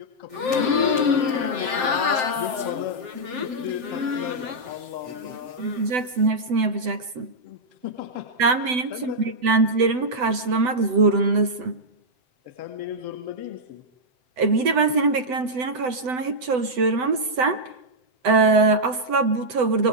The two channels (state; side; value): late; left; 7.9 ms